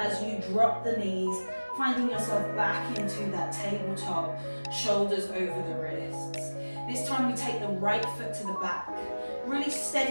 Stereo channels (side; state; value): both; inverted; correlation -1.00